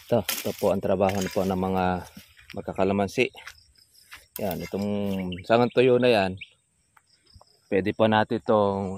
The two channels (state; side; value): identical; both; correlation 1.00